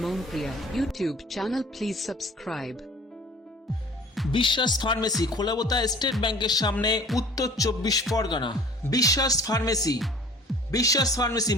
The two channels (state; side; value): normal; both; correlation 0.47